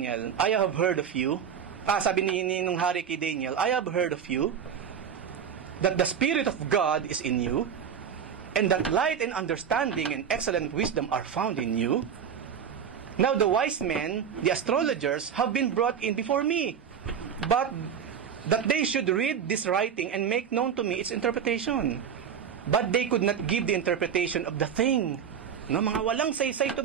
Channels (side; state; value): left; quieter; 7.8 dB